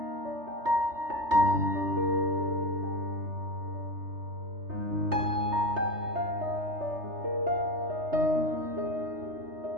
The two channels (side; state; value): left; late; 3.3 ms